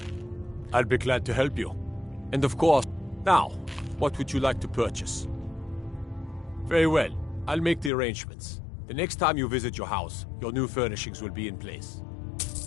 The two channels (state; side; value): drops out; right; at 7.9 s